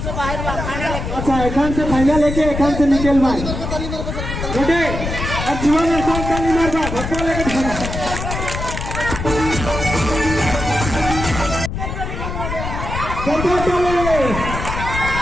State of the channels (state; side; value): noise; left; rumble, 5 dB below the sound